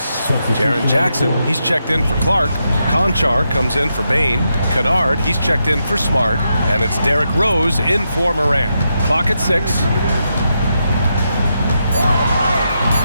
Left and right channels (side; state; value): both; inverted; correlation -0.84